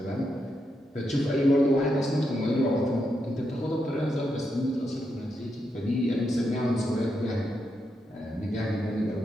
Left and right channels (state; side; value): normal; both; correlation 0.83